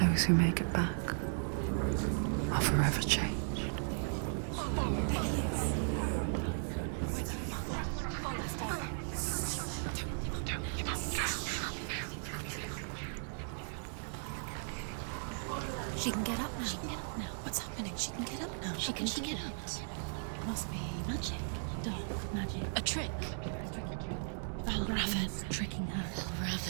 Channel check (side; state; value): left; silent; digital silence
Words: who make it back are forever changed. She can get up now. She can get up now. What's happening? She can get up now. How can she get up? Must be magic. Dark magic. A trick. Valravn's tricking her.